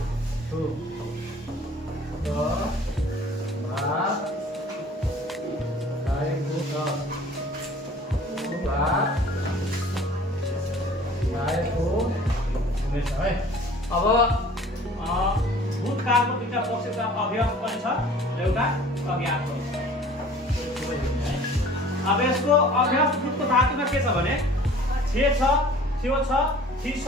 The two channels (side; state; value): both; normal; correlation 0.48